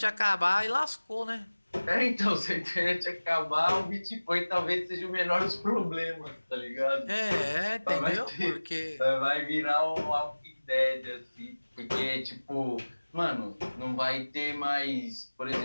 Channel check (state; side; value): inverted; both; correlation -1.00